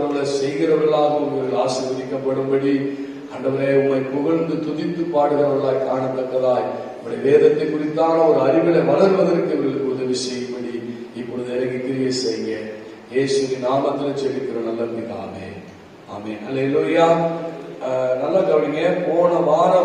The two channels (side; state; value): both; identical; correlation 1.00